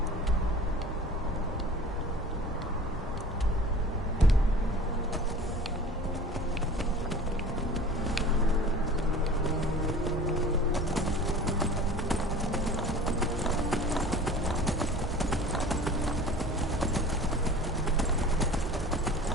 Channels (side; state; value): both; normal; correlation 0.42